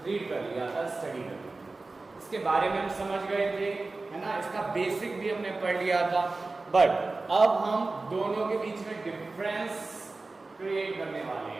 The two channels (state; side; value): quieter; left; 3.5 dB